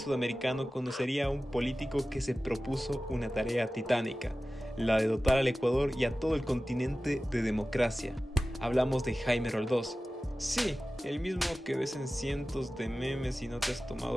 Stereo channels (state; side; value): normal; both; correlation 0.96